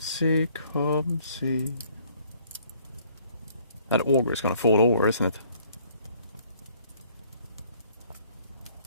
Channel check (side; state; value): both; inverted; correlation -0.61